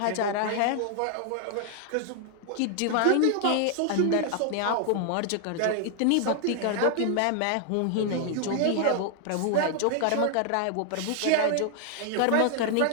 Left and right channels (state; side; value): different; both; correlation 0.00